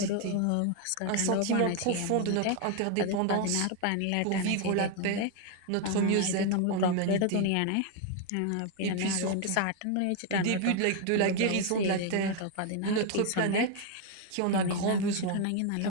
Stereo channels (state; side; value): different; both; correlation 0.01